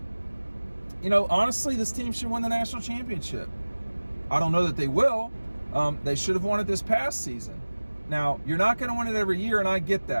honestly, this team should win the national championship. I don't know that they will. They should have won it this past season. Now, you're not going to win it every year, and I get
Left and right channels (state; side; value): inverted; both; correlation -1.00